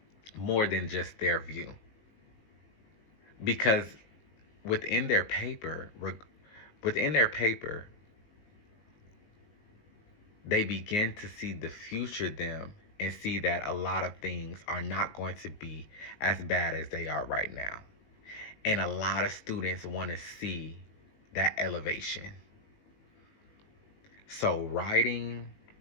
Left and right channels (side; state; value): right; late; 19 ms